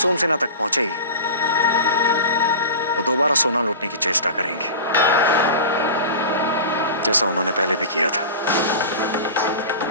तक पहुंचेगी वो दोबारा सोना लूटने की चेष्टा करेंगे, जैसा उन्होंने पहले भी किया था।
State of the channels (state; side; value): inverted; both; correlation -0.33